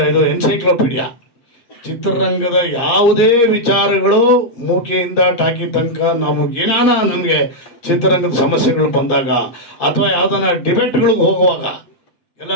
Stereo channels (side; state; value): right; late; 8.4 ms